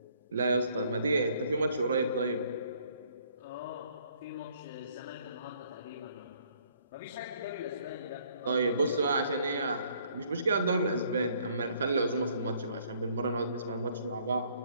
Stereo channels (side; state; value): both; inverted; correlation -0.63